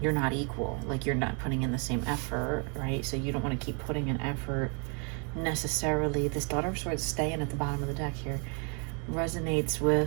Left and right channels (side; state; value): left; quieter; 36.8 dB